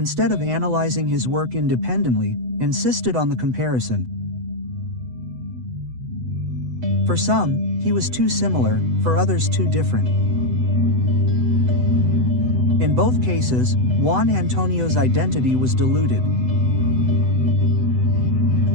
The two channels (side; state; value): left; late; 8.0 ms